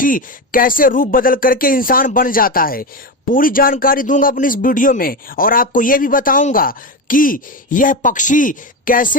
कैसे रूप बदल करके इंसान बन जाता है। पूरी जानकारी दूंगा अपनी इस वीडियो में और आपको यह भी बताऊंगा कि यह पक्षी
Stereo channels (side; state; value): both; normal; correlation 0.17